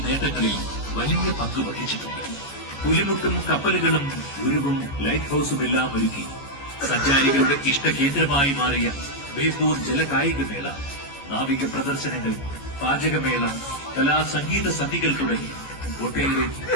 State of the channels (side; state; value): right; late; 14 ms